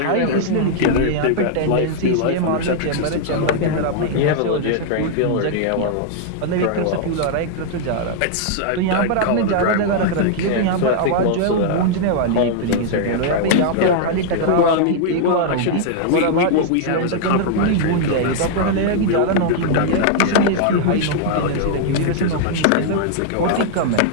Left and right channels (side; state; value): both; different; correlation -0.01